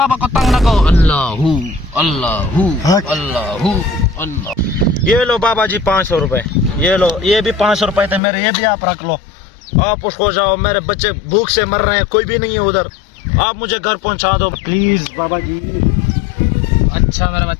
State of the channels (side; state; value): right; drops out; at 8.2 s